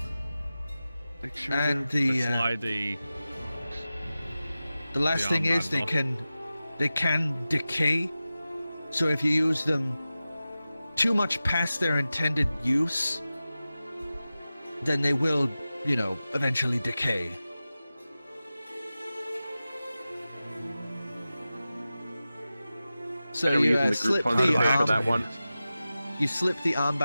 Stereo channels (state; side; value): inverted; both; correlation -0.95